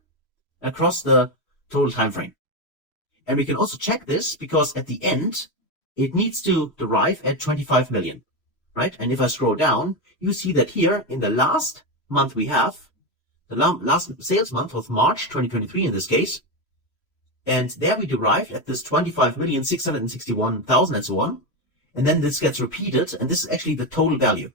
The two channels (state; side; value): late; right; 3.0 ms